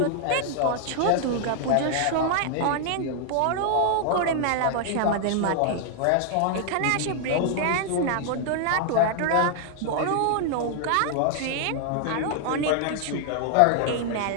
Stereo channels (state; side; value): different; both; correlation 0.00